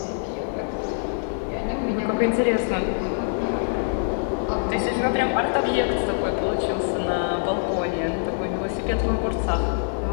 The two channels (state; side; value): silent; right; 62 dB below the other